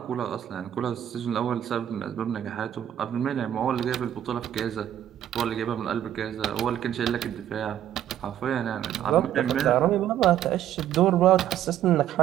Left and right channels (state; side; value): quieter; left; 11.1 dB